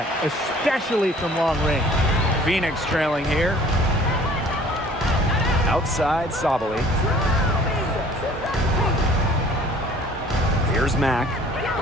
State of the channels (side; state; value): both; normal; correlation 0.52